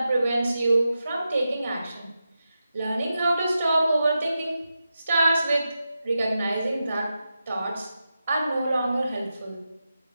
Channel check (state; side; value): inverted; both; correlation -0.90